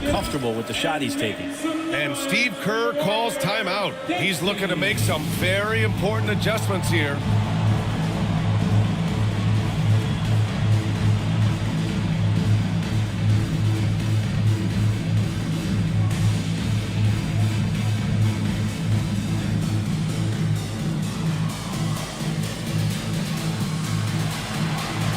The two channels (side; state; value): both; identical; correlation 1.00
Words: comfortable with the shot he's taking. And Steve Kerr calls timeout. He's looking to make some very important adjustments here.